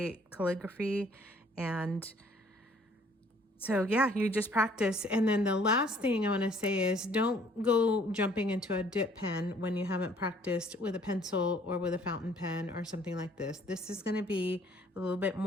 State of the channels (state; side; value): normal; both; correlation 0.59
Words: calligraphy, and so yeah, you just practice. And then the last thing I want to say is, don't go jumping into a dip pen when you haven't practiced with a pencil or with a fountain pen or something like this. This is going to be a little bit